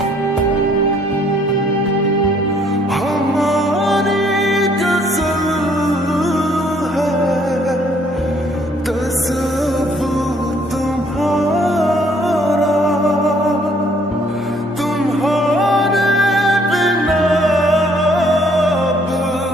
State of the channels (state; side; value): normal; both; correlation 0.64